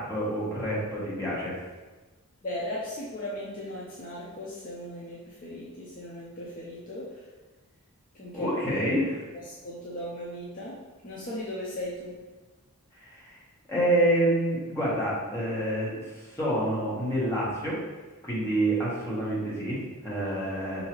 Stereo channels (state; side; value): normal; both; correlation 0.36